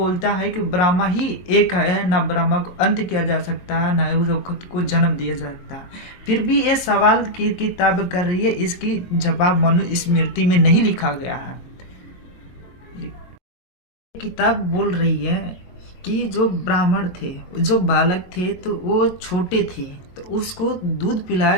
है कि ब्रह्मा ही एक है, ना ब्रह्मा को अंत किया जा सकता है, ना उस खुद को जन्म दिया जा सकता है। फिर भी ये सवाल की किताब कर रही है, इसकी जवाब मनुस्मृति में नहीं लिखा गया है। किताब बोल रही है कि जो ब्राह्मण थे, जो बालक थे, तो वो छोटे थे तो उसको दूध पिलाया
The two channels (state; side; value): late; right; 22 ms